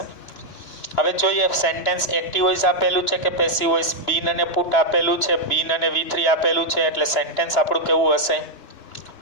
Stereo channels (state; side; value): late; right; 2.9 ms